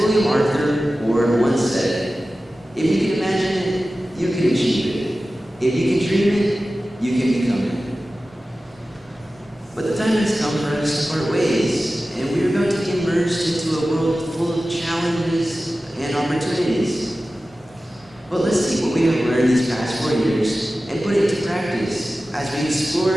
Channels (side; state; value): both; normal; correlation 0.95